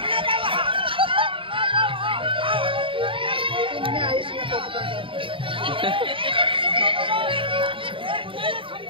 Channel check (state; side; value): late; left; 0.25 ms